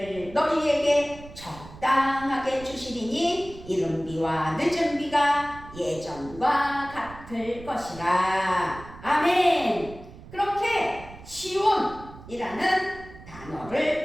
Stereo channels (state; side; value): noise; right; rumble, 17 dB below the sound